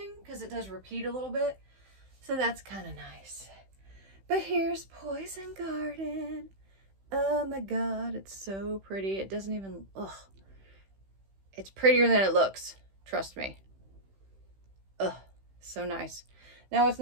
because it does repeat a little bit. So that's kind of nice. But here's Poison Garden. Oh my God, it's so pretty. It doesn't even, ugh. It's prettier than it looks. Trust me. Ugh, so nice. Now what's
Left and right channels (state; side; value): late; left; 15 ms